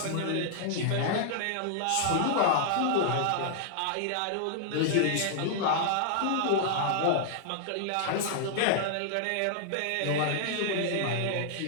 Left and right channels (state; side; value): different; both; correlation -0.01